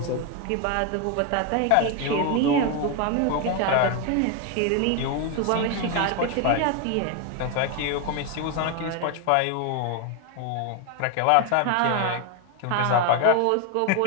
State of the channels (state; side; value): different; both; correlation 0.01